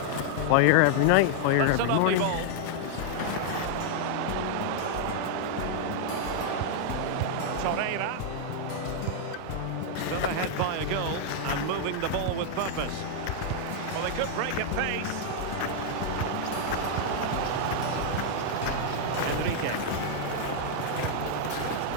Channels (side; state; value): both; different; correlation 0.00